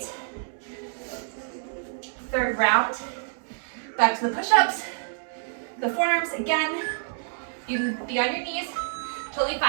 third round. Back to the push-ups. The forearms, again, you can be on your knees, totally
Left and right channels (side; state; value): left; silent; digital silence